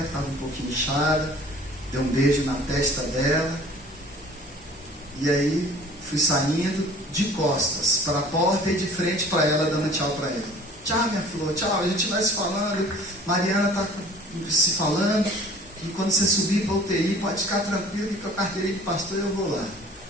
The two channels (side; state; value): both; normal; correlation 0.48